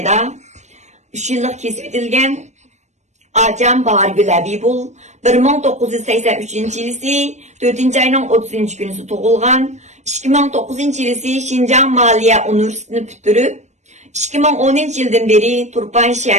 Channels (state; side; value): late; left; 0.34 ms